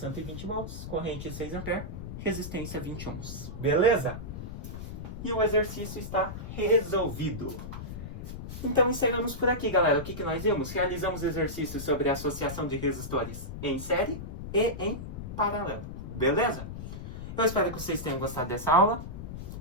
volts, corrente 6 A, resistência 20 ohms. Beleza? E o exercício está resolvido. Então encerramos por aqui, galera. O que nós vimos? Realizamos exercícios sobre a associação de resistores em série e em paralelo. Beleza? Eu espero que vocês tenham gostado dessa aula,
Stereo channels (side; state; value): left; noise; rumble, 8 dB below the sound